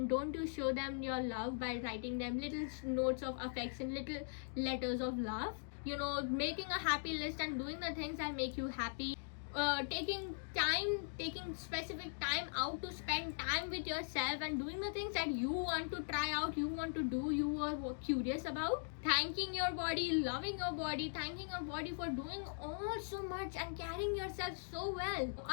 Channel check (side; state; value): right; silent; digital silence